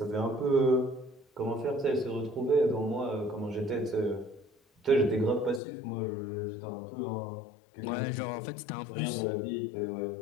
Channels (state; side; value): drops out; right; at 5.6 s